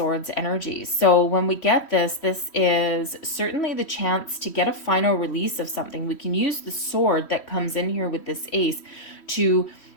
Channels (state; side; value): late; right; 3.1 ms